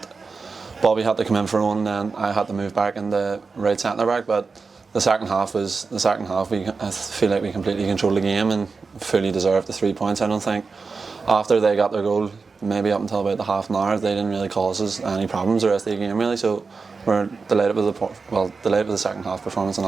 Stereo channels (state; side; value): quieter; left; 4.6 dB